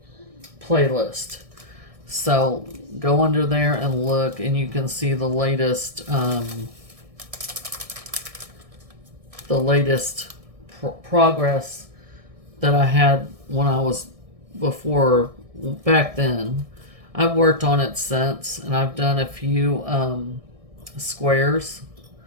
So go under there and look, and you can see the latest progress that I had when I was before back then. I've worked on it since, and I've done a few squares.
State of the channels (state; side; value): late; left; 1.6 ms